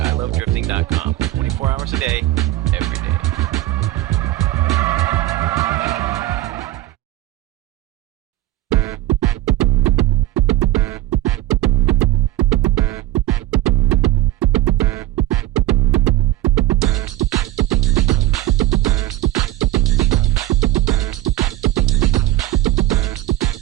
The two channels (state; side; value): quieter; left; 15.4 dB